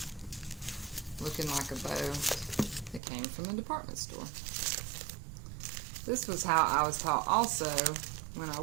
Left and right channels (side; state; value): left; drops out; at 3.0 s